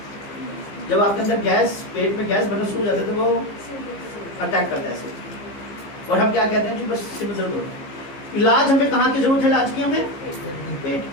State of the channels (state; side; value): late; right; 15 ms